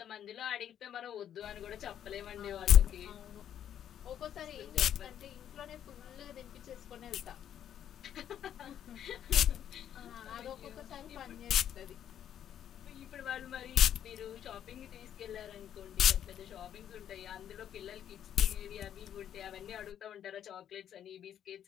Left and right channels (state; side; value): quieter; right; 10.0 dB